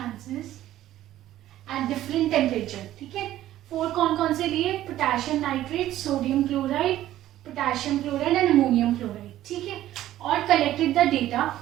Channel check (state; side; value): quieter; left; 13.6 dB